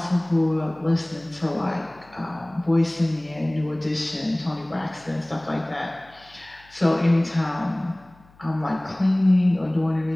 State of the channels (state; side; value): noise; left; hum, 28 dB below the sound